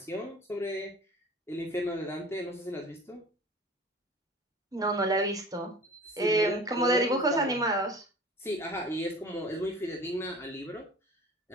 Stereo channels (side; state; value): both; normal; correlation 0.41